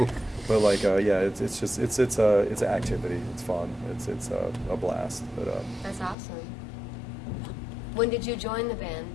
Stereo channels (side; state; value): right; drops out; at 6.2 s